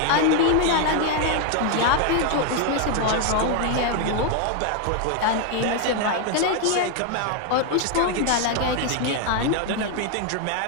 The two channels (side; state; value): both; different; correlation 0.00